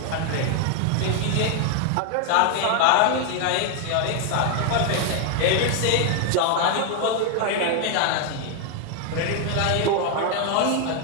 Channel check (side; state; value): both; different; correlation 0.01